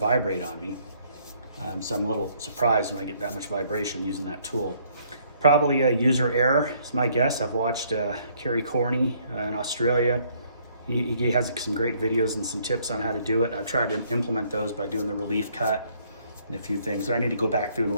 on me. So I'm a little surprised when I get that much vibration using that tool. Probably a user error is my guess. I've watched Kerry Corney in Australia. He has some great videos and some tips on how to do it. I've tried to implement those by doing the relief cut and a few things. So I need to go back through and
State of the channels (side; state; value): both; inverted; correlation -0.65